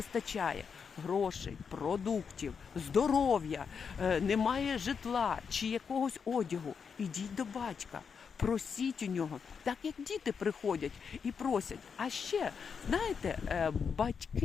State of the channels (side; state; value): right; quieter; 6.2 dB